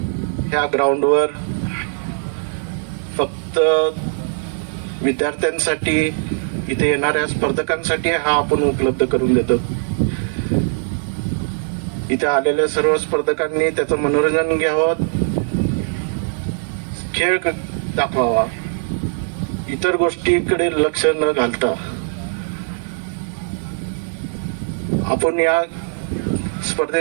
ह्या ग्राउंडवर फक्त विद्यार्थ्यांसाठी, इथे येणाऱ्या स्पर्धकांसाठी हा आपण उपलब्ध करून देतो। इथे आलेल्या सर्व स्पर्धकांनी त्याचं मनोरंजन घ्यावं, खेळ दाखवावा, इतर गोष्टीकडे लक्ष न घालता आपण या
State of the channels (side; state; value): left; silent; 66 dB below the other